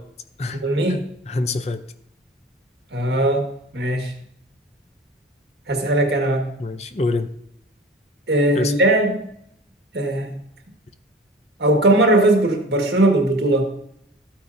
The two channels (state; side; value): normal; both; correlation 0.40